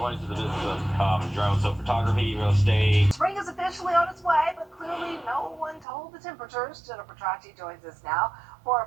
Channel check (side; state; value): left; drops out; at 5.9 s